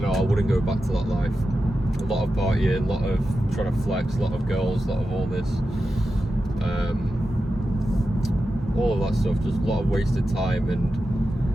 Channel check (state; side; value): normal; both; correlation 0.91